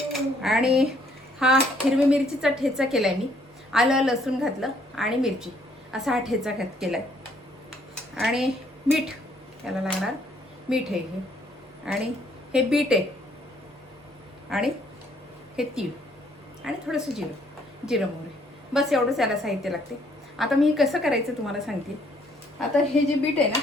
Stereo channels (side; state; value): both; normal; correlation 0.66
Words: आणि हा हिरवी मिरचीचा ठेचा केलाय मी. आलं लसूण घातलं आणि मिरची, असा हा ठेचा केलाय. आणि मीठ, याला लागणार मीठ आहे हे. आणि हे बीट आहे, आणि हे तीळ, आणि थोडंसं जिरं मोहरी. बस एवढंच याला साहित्य लागते. आता मी कसं करायचं तुम्हाला सांगते. आता हे जे बीट आहे ना,